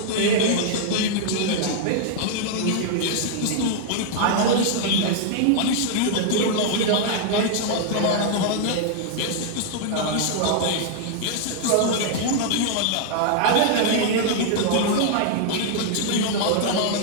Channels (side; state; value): both; different; correlation 0.00